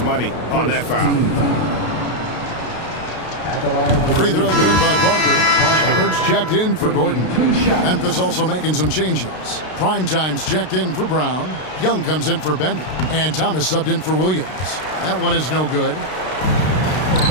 on that foul. Free throw good by Parker. Shepard's checked in for Gordon. Memphis also making some changes. Primetime's checked in for Brown. Young comes in for Bender. And Thomas subbed in for Williams. That one is no good.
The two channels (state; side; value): late; right; 32 ms